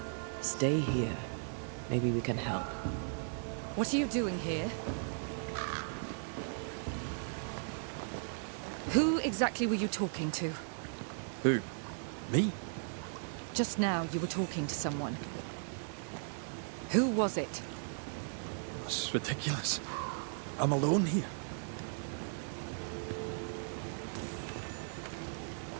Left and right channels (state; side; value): silent; left; 53 dB below the other